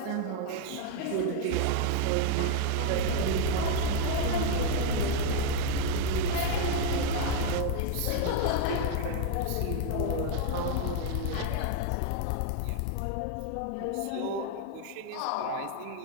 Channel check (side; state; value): both; different; correlation 0.01